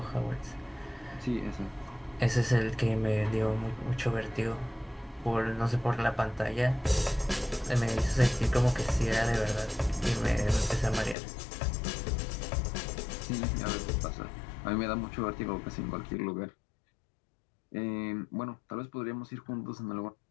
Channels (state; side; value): drops out; right; at 11.2 s